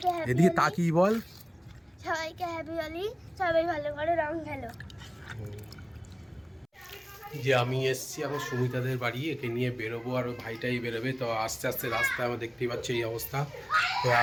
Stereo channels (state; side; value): identical; both; correlation 1.00